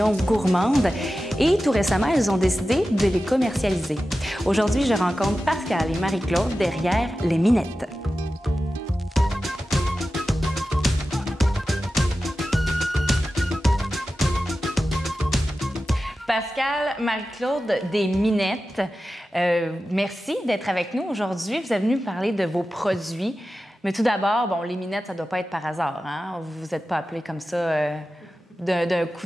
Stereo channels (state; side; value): normal; both; correlation 0.93